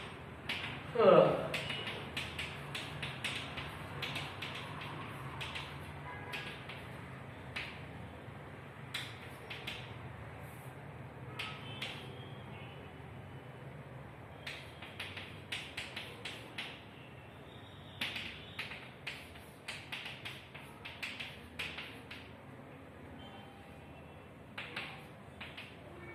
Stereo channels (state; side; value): identical; both; correlation 1.00